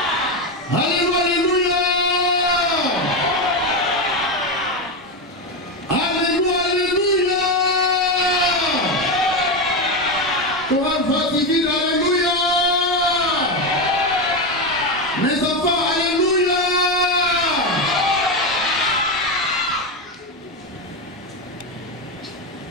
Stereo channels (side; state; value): both; normal; correlation 0.12